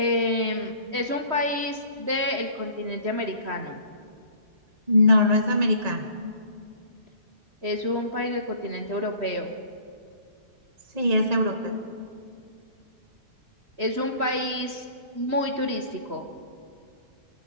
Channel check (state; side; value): late; left; 3.1 ms